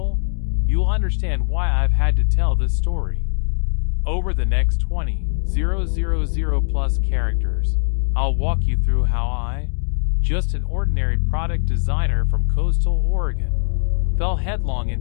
you'll understand why I've had to tell this story. Over the next 20,000 plus characters, I'll walk you through how I, just an ordinary product designer from coastal Oregon, fell headlong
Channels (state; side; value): silent; right; 65 dB below the other